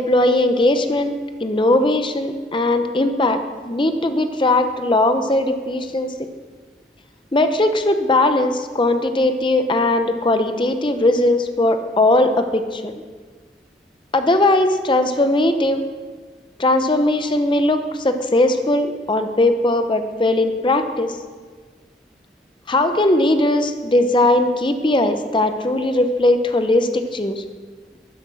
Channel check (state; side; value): normal; both; correlation 0.57